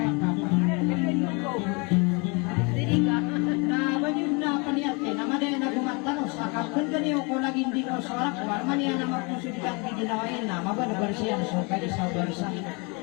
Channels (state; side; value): quieter; right; 30.7 dB